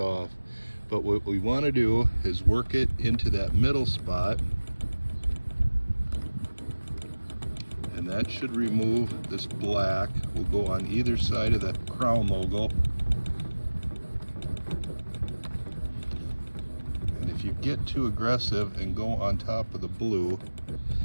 But what we want to do is work it into that middle spot, and that should remove this black. We'll go on either side of the crown logo. And if you get too aggressive and go on top of the blue,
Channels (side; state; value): both; inverted; correlation -1.00